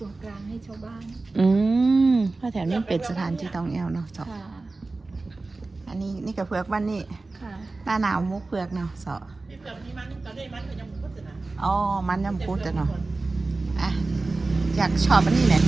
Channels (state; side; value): quieter; left; 3.4 dB